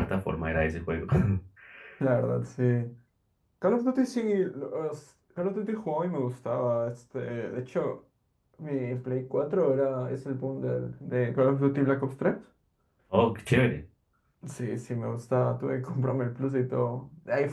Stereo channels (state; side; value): identical; both; correlation 1.00